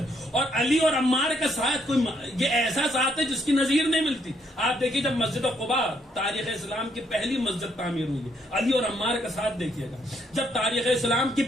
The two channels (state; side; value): normal; both; correlation 0.72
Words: اور علی اور عمار کا ساتھ کوئی یہ ایسا ساتھ ہے جس کی نظیر نہیں ملتی. آپ دیکھیے جب مسجد قباء تاریخ اسلام کی پہلی مسجد تعمیر ہوئی ہے، علی اور عمار کا ساتھ دیکھیے گا. جب تاریخ اسلام کی